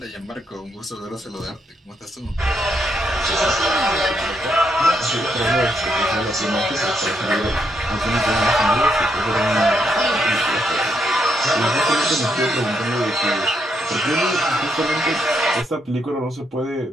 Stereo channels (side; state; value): both; normal; correlation 0.78